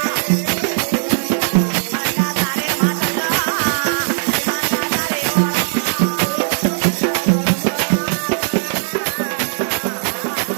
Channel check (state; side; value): silent; left; 67 dB below the other